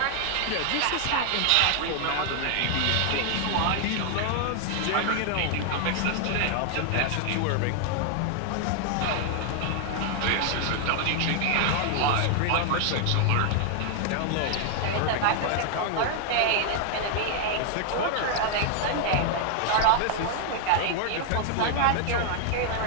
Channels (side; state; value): both; different; correlation 0.00